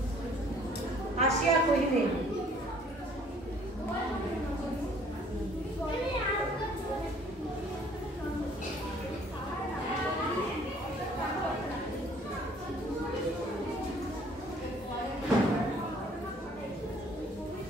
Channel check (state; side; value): normal; both; correlation 0.57